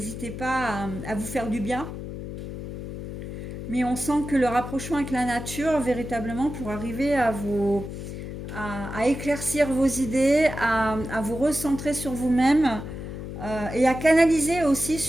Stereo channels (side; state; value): left; noise; hum, 8 dB below the sound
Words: pas à vous faire du bien. Mais on sent que le rapprochement avec la nature, véritablement, pour arriver à éclaircir vos idées, à vous recentrer sur vous-même et à canaliser aussi